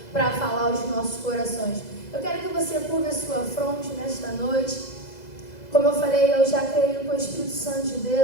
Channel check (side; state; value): right; late; 2.0 ms